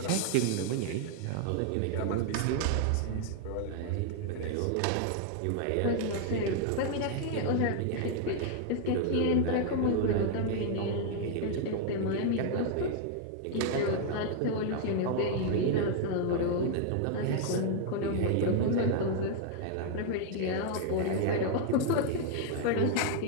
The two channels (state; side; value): different; both; correlation 0.00